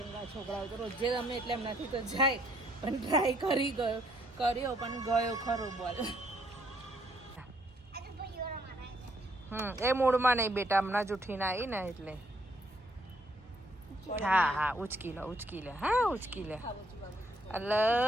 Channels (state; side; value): normal; both; correlation 0.70